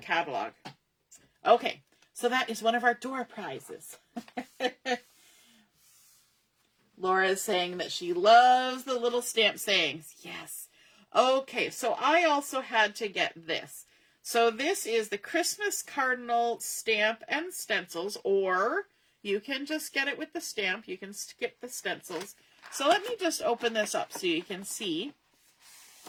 Okay, so that is one of our door prizes. Laura is saying that she loves the little stamp sayings. Yes. Okay, so I also had to get this. So this is the Christmas Cardinal stamp and stencils, or you can just get it with the stamp. You can skip the stencils. So let me just open this up so you can see.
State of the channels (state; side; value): identical; both; correlation 1.00